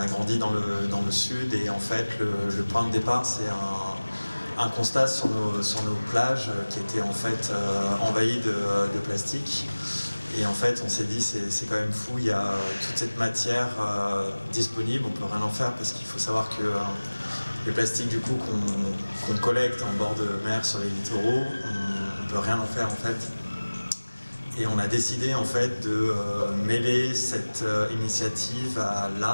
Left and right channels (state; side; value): inverted; both; correlation -1.00